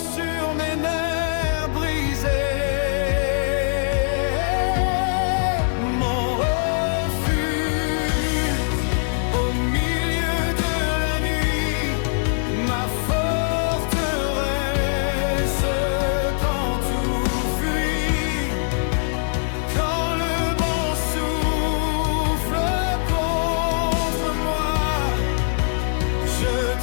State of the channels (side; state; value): right; silent; 64 dB below the other